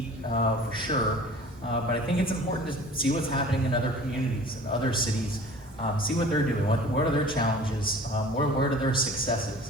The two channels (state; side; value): normal; both; correlation 0.44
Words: for sure, but I think it's important to see what's happening in other communities and other cities. See what they're doing. What are their challenges? Where are their